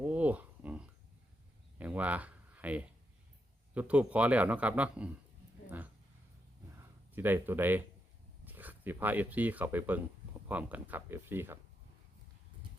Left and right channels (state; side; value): normal; both; correlation 0.83